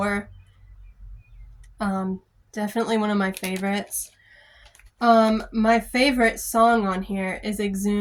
Definitely one of my favorites. My favorite song on here is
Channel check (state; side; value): identical; both; correlation 1.00